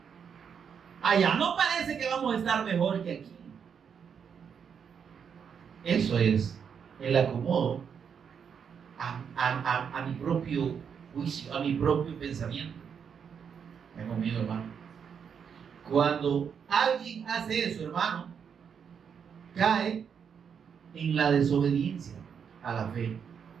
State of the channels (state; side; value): quieter; left; 7.1 dB